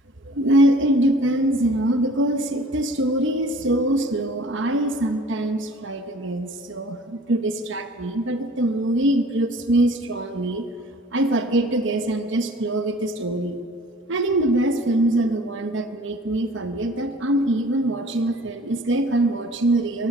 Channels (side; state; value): both; normal; correlation 0.49